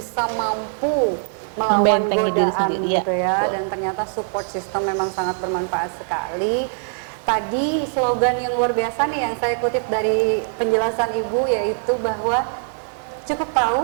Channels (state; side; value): silent; left; digital silence